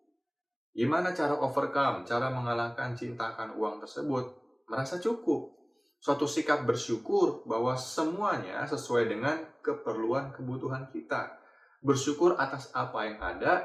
Gimana cara overcome, cara mengalahkan cinta akan uang tersebut? Merasa cukup. Suatu sikap bersyukur bahwa semuanya sesuai dengan keperluan kebutuhan kita. Bersyukur atas apa yang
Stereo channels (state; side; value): identical; both; correlation 1.00